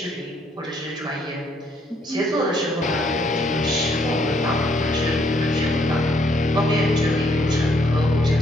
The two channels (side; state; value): both; normal; correlation 0.70